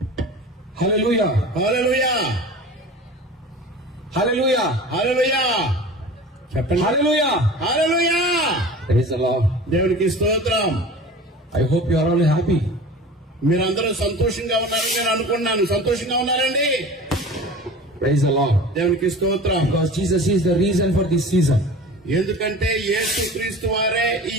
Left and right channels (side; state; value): both; normal; correlation 0.38